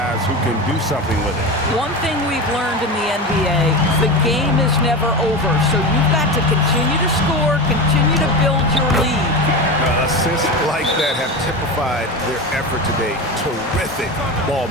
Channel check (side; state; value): both; normal; correlation 0.23